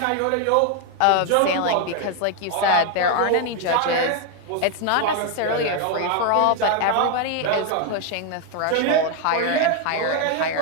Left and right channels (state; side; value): different; both; correlation 0.01